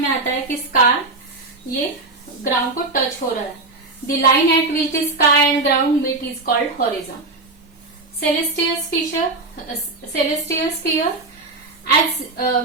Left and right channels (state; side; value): quieter; left; 3.3 dB